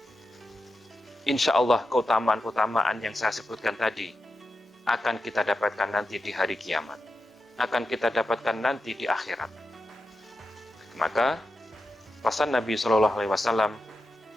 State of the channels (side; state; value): both; normal; correlation 0.90